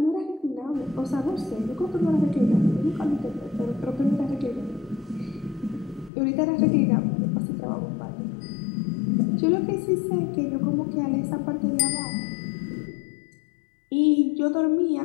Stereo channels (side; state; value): right; drops out; at 6.1 s